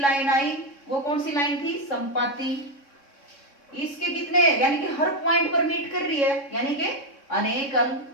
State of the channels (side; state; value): right; late; 3.6 ms